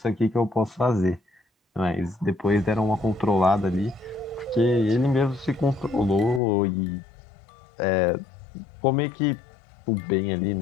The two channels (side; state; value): right; drops out; at 6.4 s